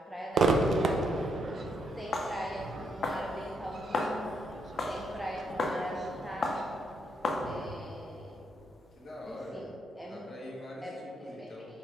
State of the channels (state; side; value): normal; both; correlation 0.76